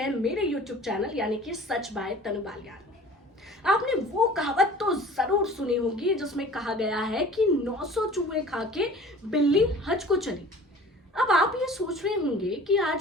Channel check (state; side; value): normal; both; correlation 0.45